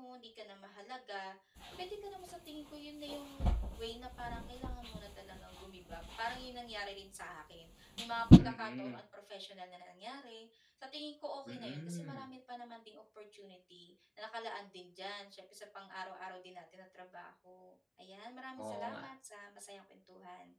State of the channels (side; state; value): both; identical; correlation 1.00